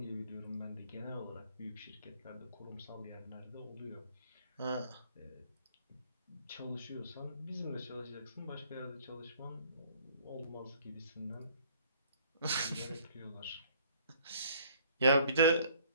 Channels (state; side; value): inverted; both; correlation -0.58